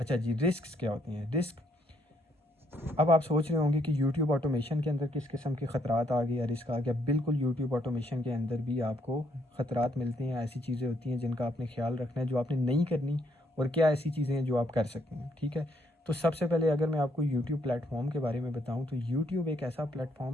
जी, रिस्क क्या होती हैं? रिस्क, अब आप सोच रहे होंगे कि YouTube ऑटोमेशन के अंदर किस किस्म के ख़तरात आ गए या रिस्क आ गया। बिल्कुल, YouTube ऑटोमेशन के अंदर भी आपको ख़तरात मिलते हैं। ऐसी चीज़ें होती हैं जिनका आपने ख्याल रखना है, जो आपने नहीं करनी, और क्या ऐसी चीज़ें हैं जो आप कर सकते हैं, ठीक है। तो सबसे पहले अगर मैं आपको YouTube प्लेटफॉर्म के बारे में बताऊँ तो YouTube एक ऐसा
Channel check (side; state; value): both; normal; correlation 0.72